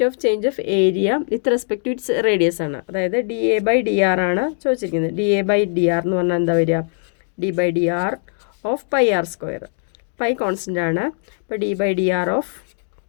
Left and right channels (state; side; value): silent; right; digital silence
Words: of change of area with respect to its radius ആണ്. അതായത് d A by d r ആണ് ചോദിച്ചിരിക്കുന്നത്. D A by d r എന്ന് പറഞ്ഞാൽ എന്താ വരിക, D by d r of pi r square. Pi constant ആണ്. അപ്പോൾ d by d r of